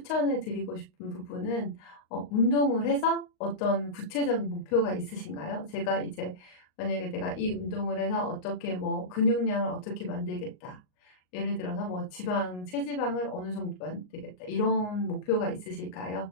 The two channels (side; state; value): right; late; 38 ms